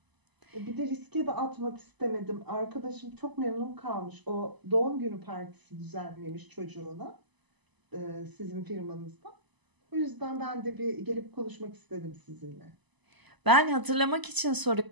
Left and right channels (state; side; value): late; left; 1.0 ms